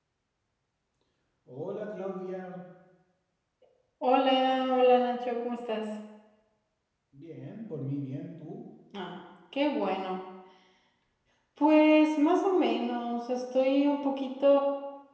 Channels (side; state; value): both; identical; correlation 1.00